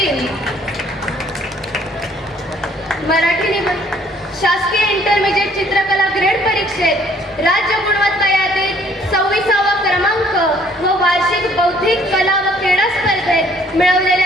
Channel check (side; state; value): both; normal; correlation 0.60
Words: मराठी निबंध शासकीय इंटरमिजिएट चित्रकला ग्रेड परीक्षेत राज्य गुणवत्ता यादीत 26वा क्रमांक व वार्षिक बौद्धिक कला व क्रीडा स्पर्धेत